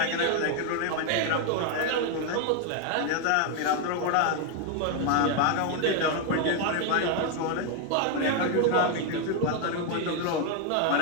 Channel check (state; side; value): different; both; correlation 0.01